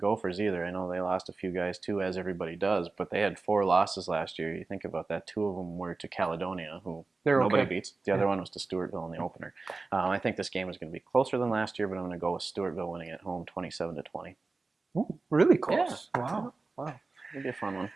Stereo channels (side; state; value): left; quieter; 3.7 dB